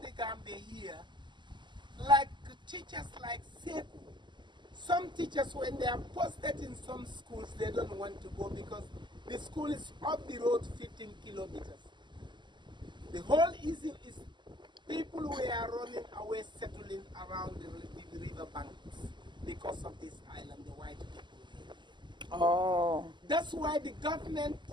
Gambia here, like teachers like Seku, some teachers when they are posted in some schools, they don't want to go because the school is up the road 15 kilometers. The whole issue is people who are running away, settling around the river banks because of this island, the white people. Oh. That's why the government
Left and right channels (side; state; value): left; late; 0.22 ms